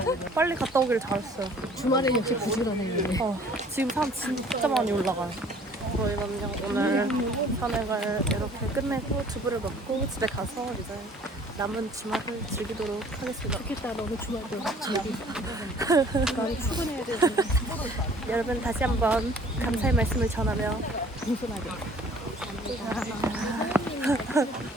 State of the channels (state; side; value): normal; both; correlation 0.53